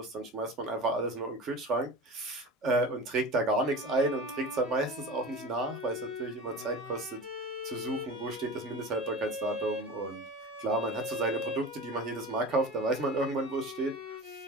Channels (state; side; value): normal; both; correlation 0.32